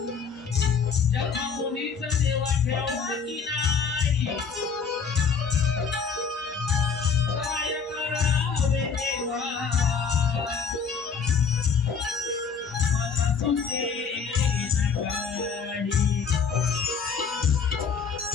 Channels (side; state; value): right; quieter; 5.9 dB